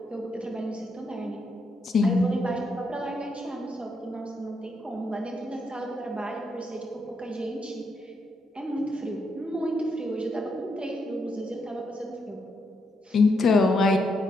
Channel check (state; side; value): normal; both; correlation 0.79